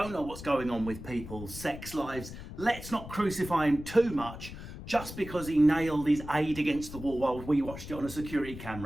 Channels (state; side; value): noise; left; rumble, 12 dB below the sound